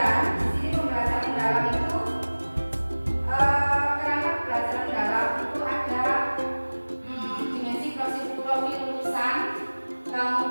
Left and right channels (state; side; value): inverted; both; correlation -1.00